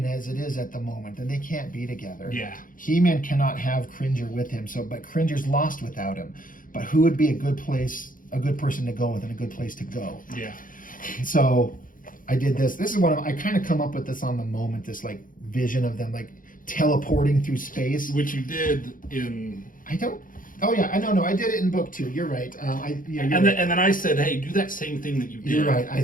as it is at the moment, and they can't be together. Yeah. He-Man cannot have Cringer with him, but Cringer's lost without him. But who would be a good person to go with, and a good place to go? Yeah. So I did this. This is I kind of come up with this on the moment, this like vision of them like teleporting through space. Which you did in... Oh yeah, I know. No, I did it in book 2. You're right. And then I said, hey, do that same thing that you did. You're right.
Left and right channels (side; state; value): right; late; 0.40 ms